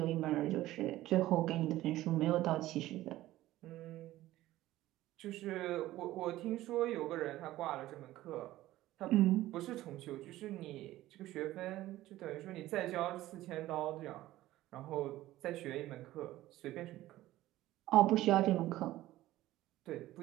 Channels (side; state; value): left; quieter; 15.7 dB